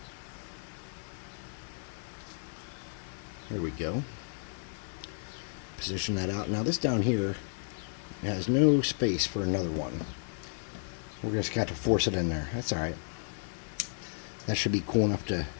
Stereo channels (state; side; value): silent; right; digital silence